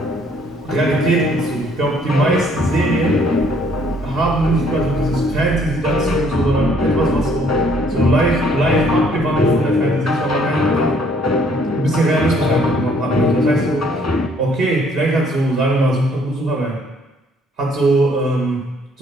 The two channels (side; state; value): both; normal; correlation 0.63